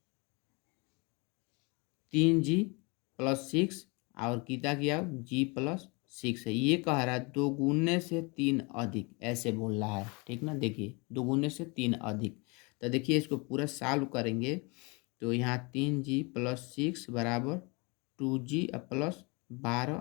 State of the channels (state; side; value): quieter; right; 29.3 dB